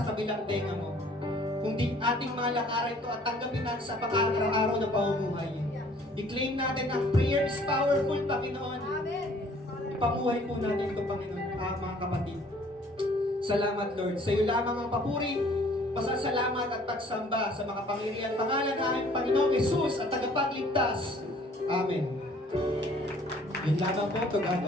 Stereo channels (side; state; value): both; normal; correlation 0.56